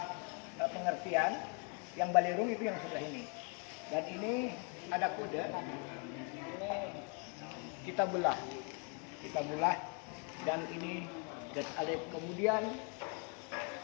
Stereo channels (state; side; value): quieter; right; 36.7 dB